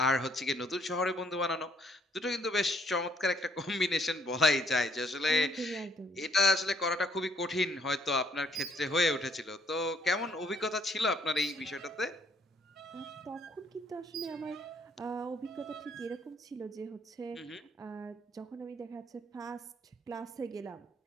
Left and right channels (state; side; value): normal; both; correlation 0.66